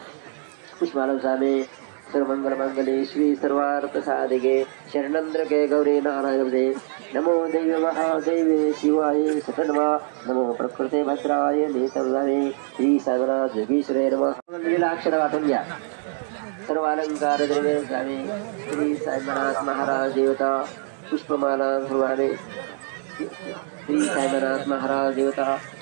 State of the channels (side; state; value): left; silent; digital silence